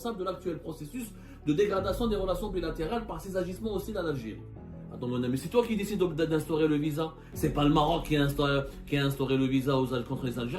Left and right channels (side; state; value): both; identical; correlation 1.00